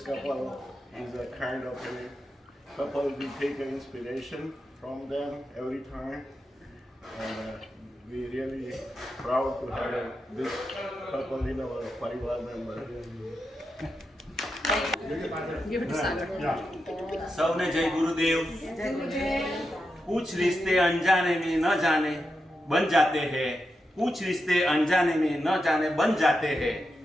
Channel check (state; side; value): normal; both; correlation 0.87